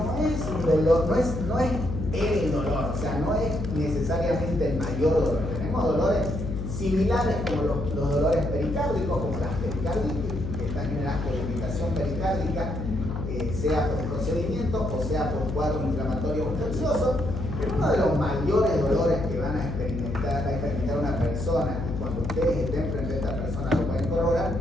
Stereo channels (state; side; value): noise; left; hum, 4 dB below the sound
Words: es un dolor, no es el dolor, o sea, no es necesariamente el mayor dolor. Tenemos dolores similares como los dolores pericárdicos, como las pericarditis, que están generadas por irritación pericárdica, sea por procedimiento o sea por cuadros inflamatorios infecciosos, pero uno de los mayores dolores que va a experimentar una persona, y cuando ustedes estén frente a esta persona lo pueden